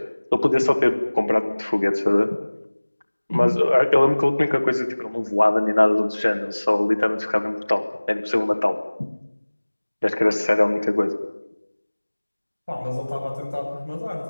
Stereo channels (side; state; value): both; inverted; correlation -1.00